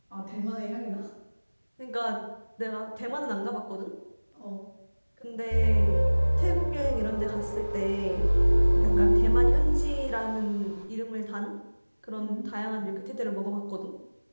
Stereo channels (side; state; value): both; inverted; correlation -1.00